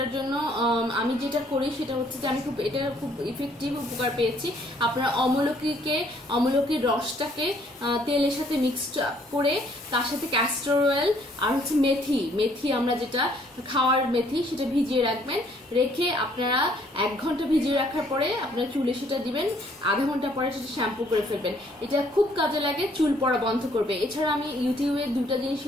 জন্য আমি যেটা করি সেটা হচ্ছে যে আমি এটা খুব ইফেক্টিভ উপকার পেয়েছি। আপনারা অমলকির রসটাকে তেলের সাথে মিক্সড করে, তার সাথে ক্যাস্টর অয়েল আর হচ্ছে মেথি আমরা যেটা খাওয়ার মেথি, সেটা ভিজিয়ে রাখবেন। রেখে আপনারা 1 ঘন্টা ভিজিয়ে রাখার পরে আপনারা চুলে সেটা দিবেন, আধা ঘন্টা পরে সেটা শ্যাম্পু করে ফেলবেন। এটা খুব কাজে লাগে, চুল পড়া বন্ধ করবে। এছাড়া আমি ইউটিউবে 2টা জিনিস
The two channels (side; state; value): both; normal; correlation 0.64